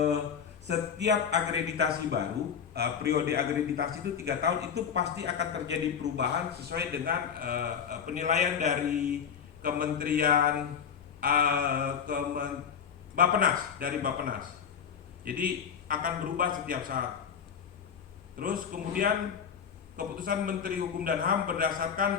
akreditasi baru, periode akreditasi itu 3 tahun, itu pasti akan terjadi perubahan sesuai dengan penilaian dari Kementerian Bappenas, dari Bappenas. Jadi akan berubah setiap saat. Terus kemudian keputusan Menteri Hukum dan HAM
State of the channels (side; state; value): right; quieter; 7.4 dB